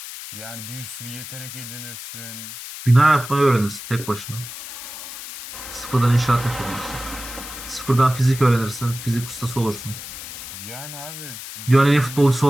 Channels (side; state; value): left; noise; hiss, 11 dB below the sound